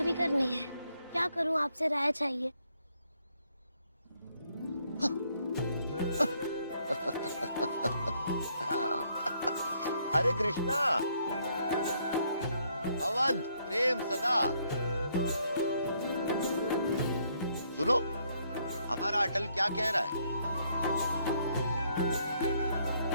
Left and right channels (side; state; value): both; inverted; correlation -0.70